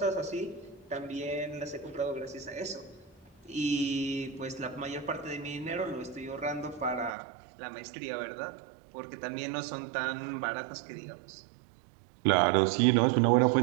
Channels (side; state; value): left; drops out; at 7.1 s